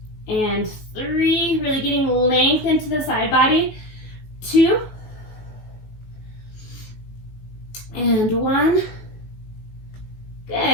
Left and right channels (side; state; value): right; late; 19 ms